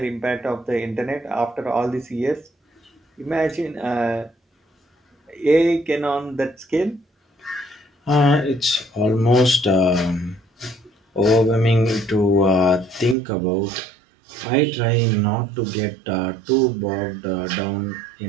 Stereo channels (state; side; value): drops out; left; at 13.2 s